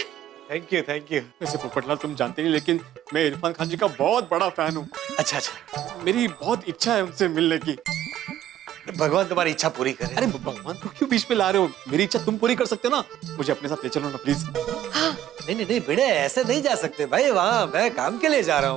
Thank you thank you. वैसे पोपटलाल तुम जानते नहीं, लेकिन मैं इरफान खान जी का बहुत बड़ा फैन हूँ। अच्छा अच्छा, मेरी बहुत इच्छा है उनसे मिलने की। भगवान तुम्हारी इच्छा पूरी करे। अरे भगवान को क्यों बीच में ला रहे हो? मेरी इच्छा तुम पूरी कर सकते हो ना, मुझे अपने साथ ले चलो ना प्लीज। नहीं नहीं नहीं भिड़े, ऐसे नहीं जा सकते भाई, वहाँ मैं काम के लिए जा रहा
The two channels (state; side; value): quieter; left; 11.9 dB